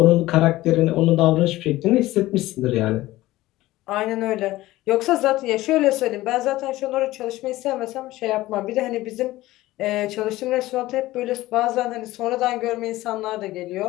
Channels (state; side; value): quieter; right; 17.2 dB